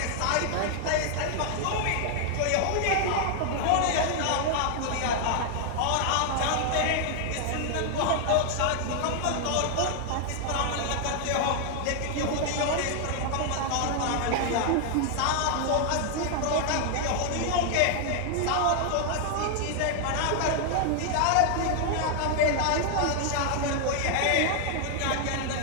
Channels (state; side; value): different; both; correlation 0.00